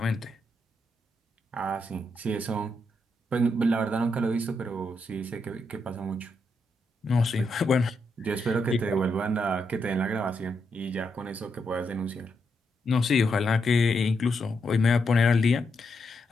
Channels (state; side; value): normal; both; correlation 0.81